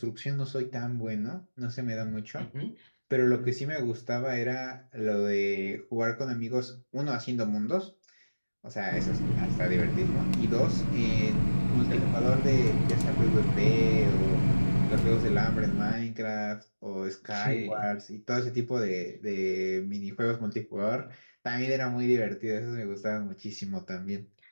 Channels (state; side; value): inverted; both; correlation -1.00